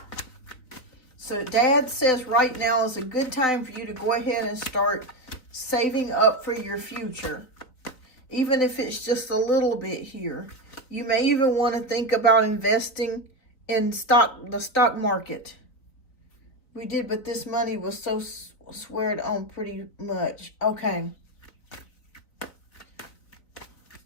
So Dad says right now is a good time for you to go ahead and start saving up for your future. Even if it's just a little bit here. You may even want to think about investing in the stock market. We did, but this money was so squared on pretty much. Okay.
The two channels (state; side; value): late; right; 3.9 ms